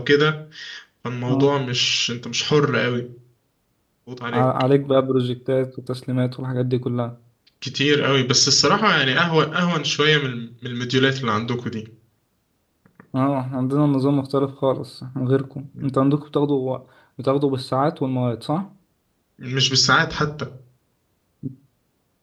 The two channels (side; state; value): both; identical; correlation 1.00